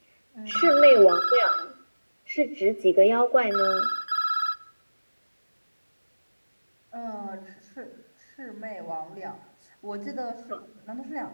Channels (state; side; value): inverted; both; correlation -1.00